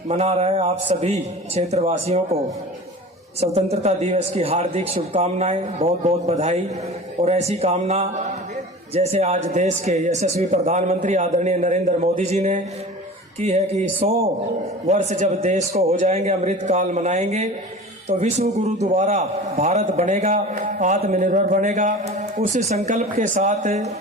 मना रहे आप सभी क्षेत्रवासियों को स्वतंत्रता दिवस की हार्दिक शुभकामनाएं, बहुत बहुत बधाई। और ऐसी कामना जैसे आज देश के यशस्वी प्रधानमंत्री आदरणीय नरेंद्र मोदी जी ने की है कि 100 वर्ष जब देश को हो जाएंगे, अमृत काल मनाएंगे, तो विश्व गुरु दोबारा भारत बनेगा, आत्मनिर्भर बनेगा। उस संकल्प के साथ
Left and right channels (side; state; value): both; normal; correlation 0.37